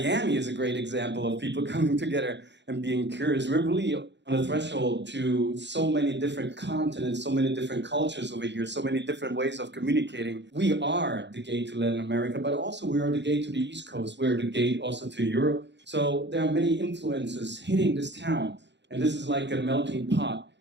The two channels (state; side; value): late; left; 0.52 ms